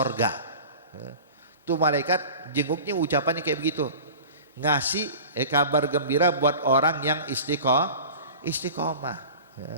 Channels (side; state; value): both; inverted; correlation -0.37